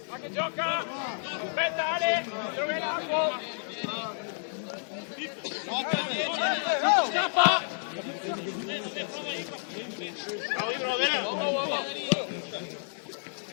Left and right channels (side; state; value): right; silent; digital silence